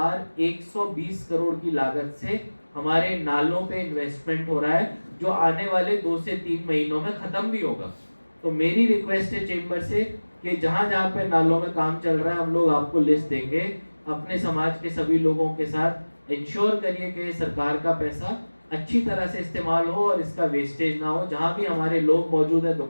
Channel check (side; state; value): both; inverted; correlation -1.00